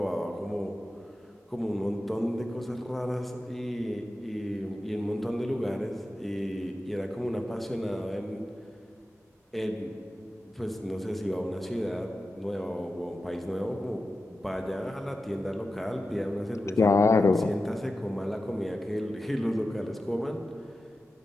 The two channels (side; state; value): both; normal; correlation 0.92